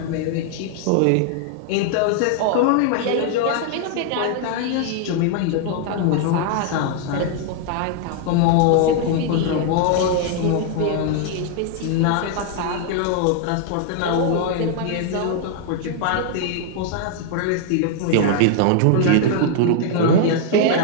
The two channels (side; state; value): both; different; correlation 0.00